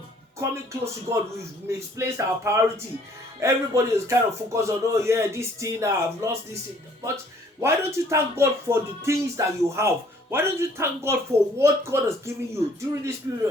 coming close to God. We've misplaced our priority. Everybody is kind of focused on, oh yeah, this thing, I've lost this thing. But why don't you thank God for the things that you have? Why don't you thank God for what God has given you during this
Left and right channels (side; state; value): both; normal; correlation 0.59